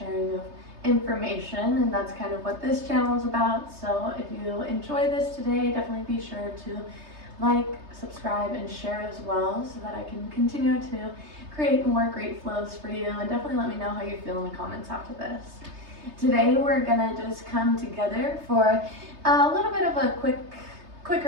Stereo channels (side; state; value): left; late; 3.3 ms